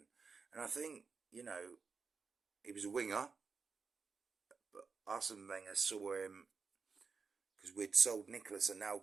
And I think, he was a winger, but Arsene Wenger saw him because we'd sold Nicolas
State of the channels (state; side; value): quieter; left; 5.1 dB